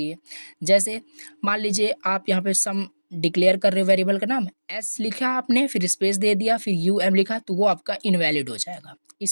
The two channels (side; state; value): both; inverted; correlation -1.00